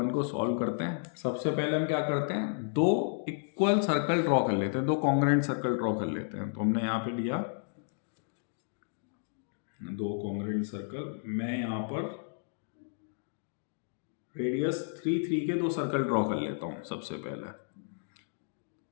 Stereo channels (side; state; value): right; silent; digital silence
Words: को सॉल्व करते हैं। सबसे पहले हम क्या करते हैं? दो इक्वल सर्कल ड्रॉ कर लेते हैं, दो कॉन्ग्रुएंट सर्कल ड्रॉ कर लेते हैं। तो हमने यहाँ पे लिया दो कॉन्ग्रुएंट सर्कल। मैं यहाँ पर रेडियस 3 3 के दो सर्कल ड्रॉ कर लेता हूँ सबसे पहले।